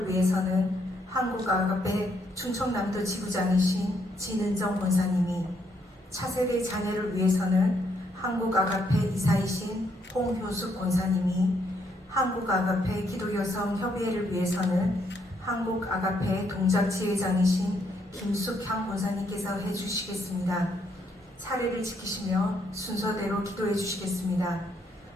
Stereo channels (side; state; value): both; normal; correlation 0.73